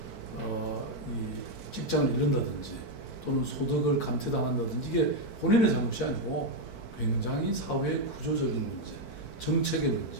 이 직장을 잃는다든지 또는 소득을 감퇴당한다든지 이게 본인의 잘못이 아니고 굉장히 사회의 구조적인 문제, 정책의 문제,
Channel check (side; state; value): right; late; 4.5 ms